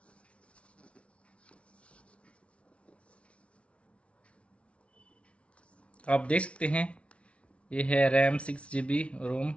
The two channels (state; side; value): late; right; 0.061 ms